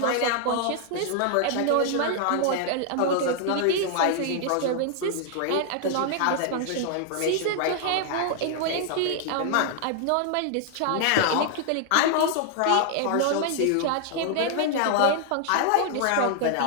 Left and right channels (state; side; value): different; both; correlation 0.00